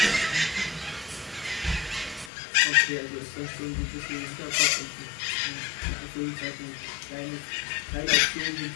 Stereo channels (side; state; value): right; drops out; at 2.3 s